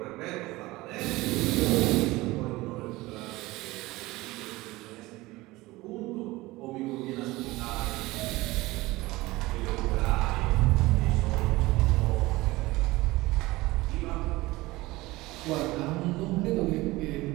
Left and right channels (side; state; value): left; quieter; 20.0 dB